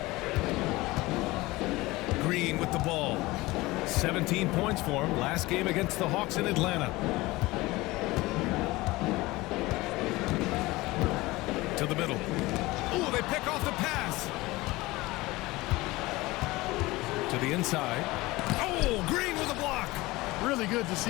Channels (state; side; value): quieter; right; 20.5 dB